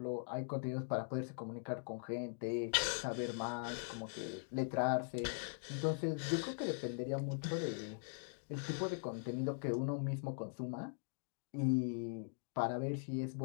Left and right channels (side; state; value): right; silent; digital silence